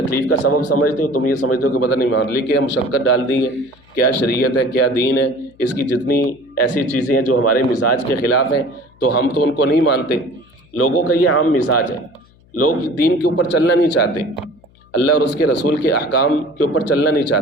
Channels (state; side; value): noise; left; hum, 30 dB below the sound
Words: کا سبب سمجھتے ہو، تم یہ سمجھتے ہو کہ پتہ نہیں معاملے کیا مشقت ڈال دی ہے، کیا شریعت ہے، کیا دین ہے، اس کی جتنی ایسی چیزیں ہیں جو ہمارے مزاج کے خلاف ہیں تو ہم تو ان کو نہیں مانتے۔ لوگوں کا یہ عام مزاج ہے، لوگ دین کے اوپر چلنا نہیں چاہتے، اللہ اور اس کے رسول کے احکام کے اوپر چلنا نہیں